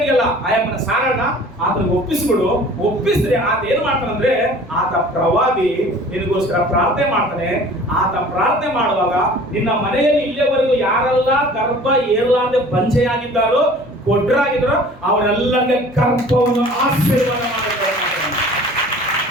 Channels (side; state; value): both; normal; correlation 0.47